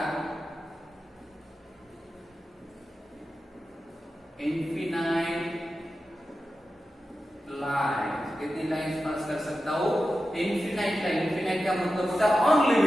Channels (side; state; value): both; normal; correlation 0.92